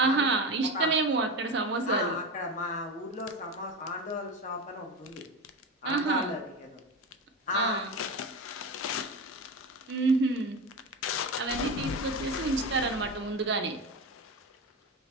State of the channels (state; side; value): normal; both; correlation 0.22